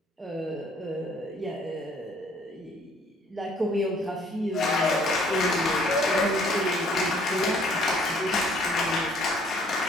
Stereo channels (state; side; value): normal; both; correlation 0.60